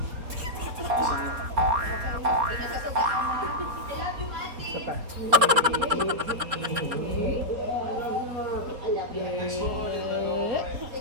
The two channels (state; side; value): late; left; 4.3 ms